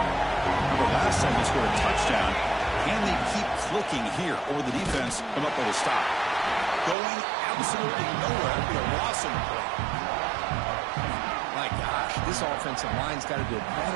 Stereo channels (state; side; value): drops out; left; at 7.0 s